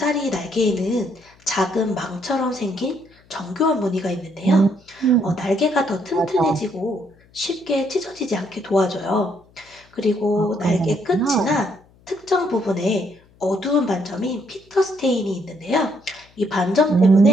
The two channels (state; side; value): noise; left; hum, 30 dB below the sound